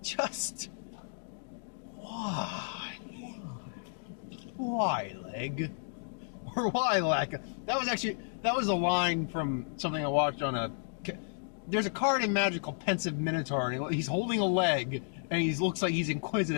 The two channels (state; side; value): silent; right; digital silence